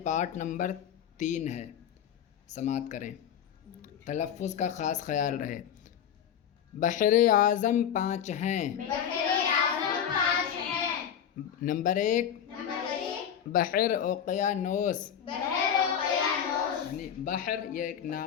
پارٹ نمبر 3 ہے۔ سماعت کریں، تلفظ کا خاص خیال رہے۔ بحر اعظم 5 ہیں۔ بحر اعظم 5 ہیں۔ نمبر 1 بحر اوقیانوس، بحر اوقیانوس، یعنی بحر یہ ایک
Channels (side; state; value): right; quieter; 8.9 dB